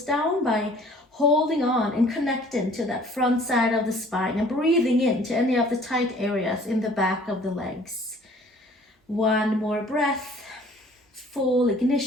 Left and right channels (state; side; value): normal; both; correlation 0.53